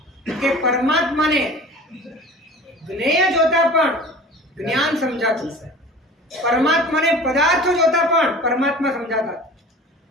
કે પરમાત્માને જ્ઞેય જોતા પણ જ્ઞાન સમજાતું, પરમાત્માને પદાર્થો જોતા પણ પરમાત્મા સમજાતા.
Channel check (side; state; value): both; normal; correlation 0.40